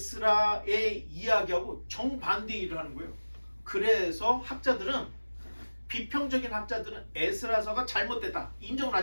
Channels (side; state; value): both; inverted; correlation -1.00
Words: 이야기하고 정반대 일을 하는 거예요. 그래서 비평적인 학자들은 에스라서가 잘못됐다, 인정을